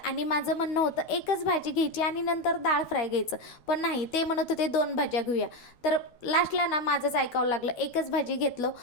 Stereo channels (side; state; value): right; late; 12 ms